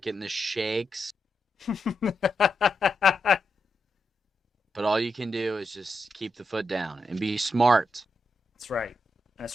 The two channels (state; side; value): normal; both; correlation 0.84